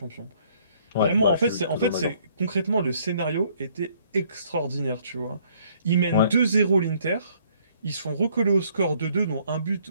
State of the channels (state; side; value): inverted; both; correlation -0.64